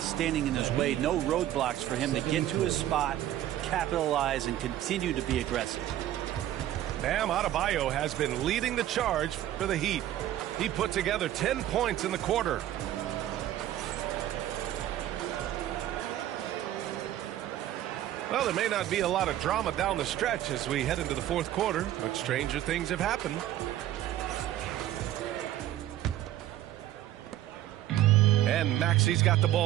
in his way, no roadblocks for him to get to his spot, capitalize, and continue to be aggressive. Bam Adebayo has been leading the charge for the Heat. He put together 10 points in the quarter. Well, there may not be a lot of drama down the stretch as we head into the fourth quarter, but stranger things have happened. And Maxi's got the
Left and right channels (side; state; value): left; quieter; 13.0 dB